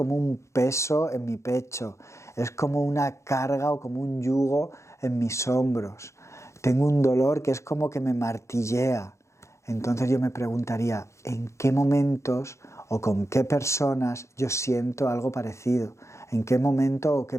un peso en mi pecho, es como una carga o como un yugo en mis hombros. Tengo un dolor que es como que me martillea. Entonces yo me preguntaría, ¿en qué momentos o con qué personas yo siento algo parecido? ¿En qué momento o qué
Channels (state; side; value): late; right; 0.14 ms